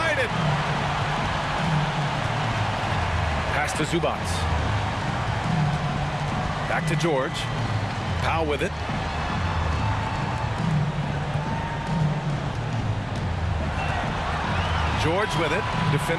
it. Pass to Zubats. Back to George. Powell with it. George with it.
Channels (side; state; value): both; identical; correlation 1.00